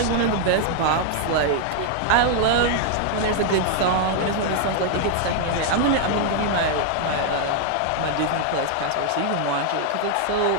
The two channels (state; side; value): different; both; correlation 0.00